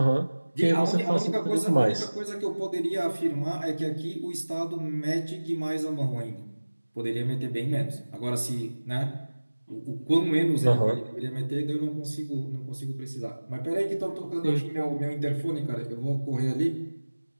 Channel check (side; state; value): both; inverted; correlation -1.00